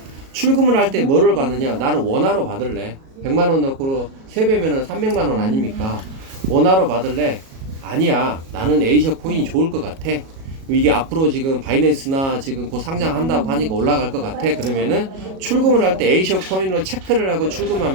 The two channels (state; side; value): late; left; 37 ms